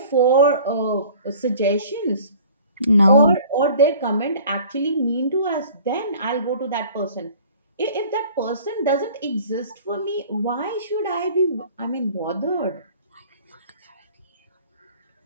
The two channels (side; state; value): both; inverted; correlation -0.49